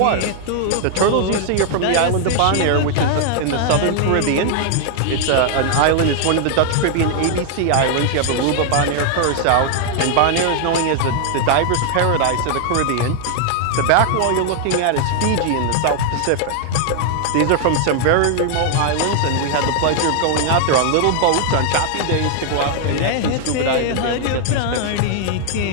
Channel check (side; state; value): both; different; correlation 0.00